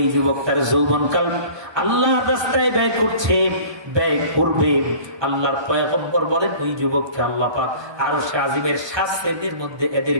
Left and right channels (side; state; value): left; late; 1.2 ms